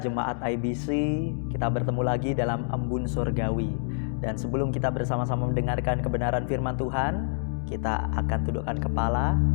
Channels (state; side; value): silent; right; digital silence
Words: IBC, kita bertemu lagi dalam Embun Surgawi. Dan sebelum kita bersama-sama mendengarkan kebenaran firman Tuhan, kita akan tundukkan kepala,